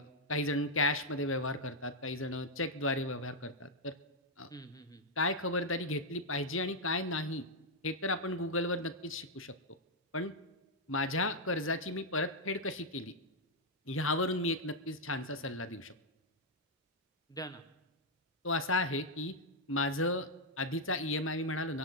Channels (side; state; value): both; normal; correlation -0.02